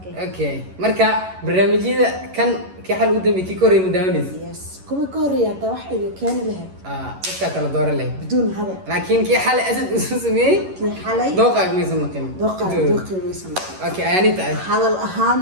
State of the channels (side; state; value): left; late; 11 ms